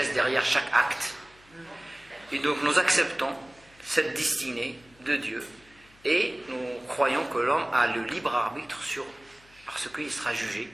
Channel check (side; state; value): left; noise; hum, 28 dB below the sound